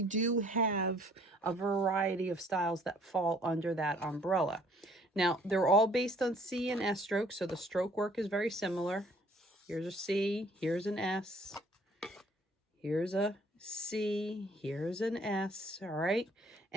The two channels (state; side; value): normal; both; correlation 0.58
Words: do have a variety of styles that fall under that umbrella. Now, they're all based on C and S strokes, so the stroke work is very similar. Here's a C, here's an S, here's a C, here's an S, all right?